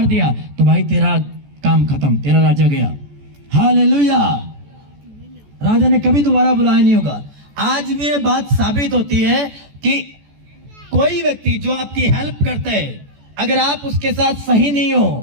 दिया तो भाई तेरा काम खत्म, तेरा राजा गया। हालेलुया, राजा ने कभी दोबारा बुलाया नहीं होगा। आज भी ये बात साबित होती है कि कोई व्यक्ति जो आपकी हेल्प करता है, अगर आप उसके साथ सही नहीं हो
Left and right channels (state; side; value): late; left; 14 ms